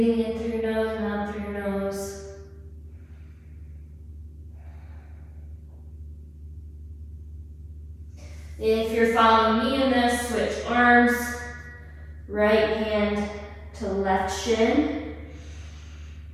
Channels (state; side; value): identical; both; correlation 1.00